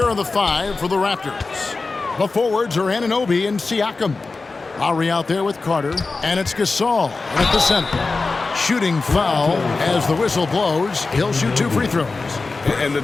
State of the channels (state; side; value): quieter; right; 3.9 dB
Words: are the five for the Raptors. The forwards are Anunoby and Siakam. Lowry out there with Carter, and it's Gasol at the center. Shooting foul as the whistle blows. He'll shoot 2 free throws. And the